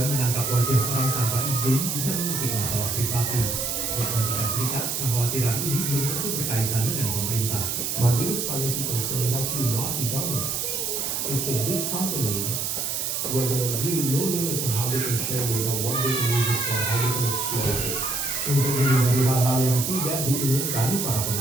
menangkap wajah orang tanpa izin bisa mengusik masalah privasi. Di Amerika Serikat, kekhawatiran ini belum tentu berkaitan dengan pemerintah. My biggest privacy concern is actually not the government. It's the big companies where there are really no limits on how they can share data, what they can use it for, how they can exploit it. Untuk menghindari hal-hal yang tidak diinginkan, para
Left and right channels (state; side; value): noise; right; hiss, 1 dB below the sound